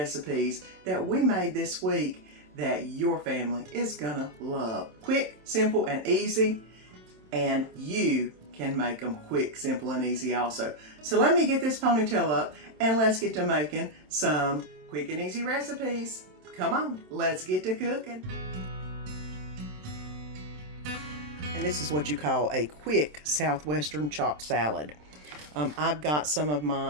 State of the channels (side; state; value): left; late; 27 ms